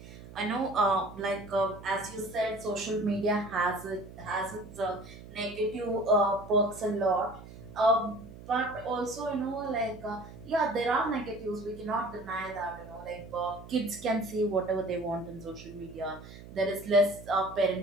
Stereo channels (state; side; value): noise; right; hum, 16 dB below the sound